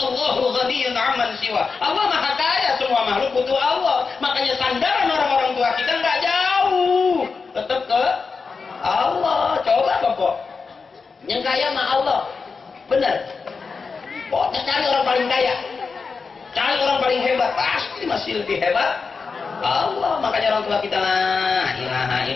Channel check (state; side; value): quieter; right; 4.8 dB